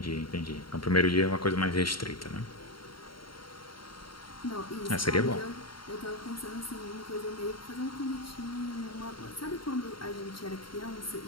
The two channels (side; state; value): right; late; 0.73 ms